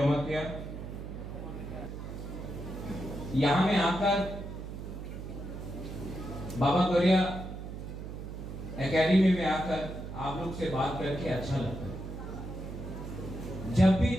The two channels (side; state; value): right; noise; hum, 8 dB below the sound